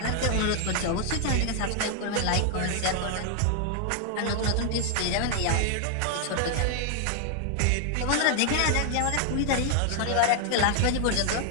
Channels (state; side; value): different; both; correlation 0.00